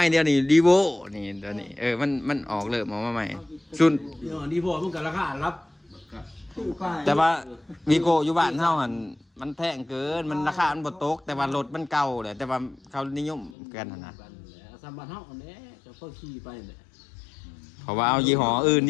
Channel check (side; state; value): right; drops out; at 13.6 s